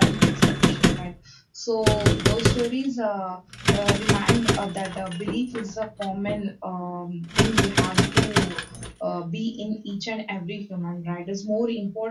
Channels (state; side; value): identical; both; correlation 1.00